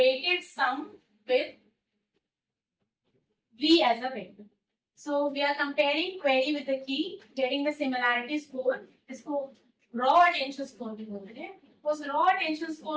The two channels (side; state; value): both; identical; correlation 1.00